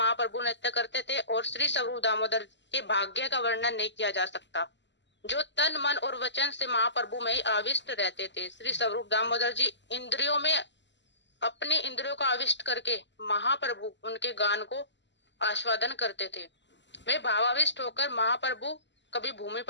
नृत्य करते थे और श्री स्वरूप दामोदर के भाग्य का वर्णन नहीं किया जा सकता, जो तन मन और वचन से महाप्रभु में ही आविष्ट रहते थे। श्री स्वरूप दामोदर जी इंद्रियों में अपनी इंद्रियों को आविष्ट करके महाप्रभु उनके गान को आस्वादन करते थे। वे भावाविष्ट होकर महाप्रभु कभी भूमि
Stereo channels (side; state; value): right; late; 0.52 ms